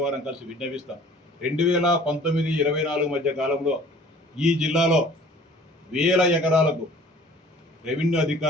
వారం కలిసి విజ్ఞపిస్తాం. 2019-24 మధ్య కాలంలో ఈ జిల్లాలో వేల ఎకరాలకు రెవెన్యూ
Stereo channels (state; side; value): normal; both; correlation 0.50